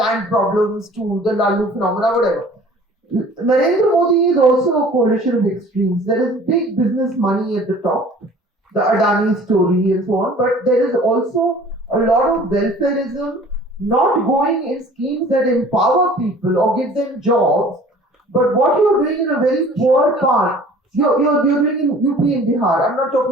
to the Lalu phenomena, whatever. Narendra Modi is also a coalition of extremes. There is big business money at the top, the Adani story and so on, but there is also a lot of welfareism, not going in schemes that empower people or give them jobs, but what you're doing in a very poor part, you're doing in UP and Bihar. I'm not talking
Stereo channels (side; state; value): both; normal; correlation 0.48